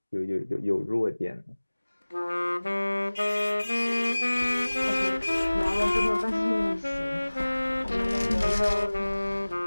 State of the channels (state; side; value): inverted; both; correlation -1.00